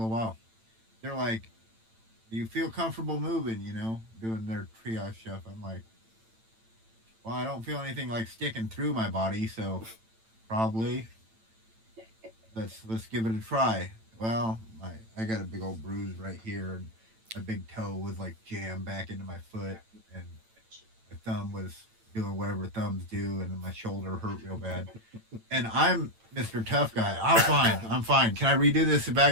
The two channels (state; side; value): late; left; 9.0 ms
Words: while." They're like, "Do you feel comfortable moving? Doing their triage stuff." I'm like, "Well, I don't feel anything like sticking through my body, so probably let's give it a try." Well, I got a big old bruise right here, and my big toe was like jammed back into my foot, and my thumb was doing whatever thumbs do, and then my shoulder hurt real bad. And I'm Mr. Tough Guy. I'm fine. I'm fine. Can I redo this